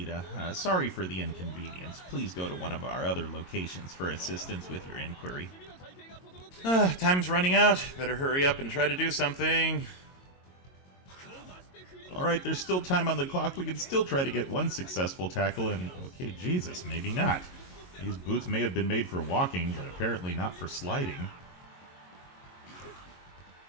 Sorry for the inconvenience. Please go to one of our other locations for assistance with your inquiry. Time's running out. Better hurry up and try to do something. Alright, there's still time on the clock. We can still try to get one successful tackle and... Okay, Jesus, maybe not. These boots may have been made for walking, but apparently not for sliding.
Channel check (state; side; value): late; right; 22 ms